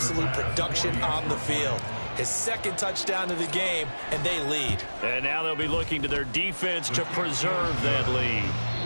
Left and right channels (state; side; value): inverted; both; correlation -1.00